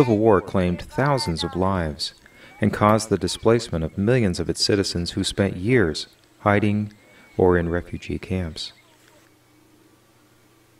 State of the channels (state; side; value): identical; both; correlation 1.00